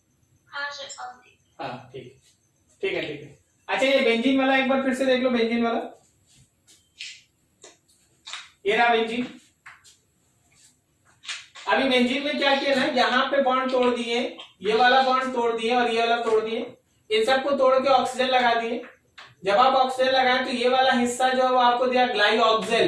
सर। हाँ ठीक है। अच्छा, ये बेंजीन वाला एक बार फिर से देख लो, बेंजीन वाला, ये रहा बेंजीन। अभी बेंजीन में क्या किया ना, यहाँ पे बॉन्ड तोड़ दिए, ये वाला बॉन्ड तोड़ दिए और ये वाला तोड़ दिए, इन सबको तोड़ के ऑक्सीजन लगा दिए। जब आप ऑक्सीजन लगाएं तो ये वाला हिस्सा जो है वो आपको दिया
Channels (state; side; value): identical; both; correlation 1.00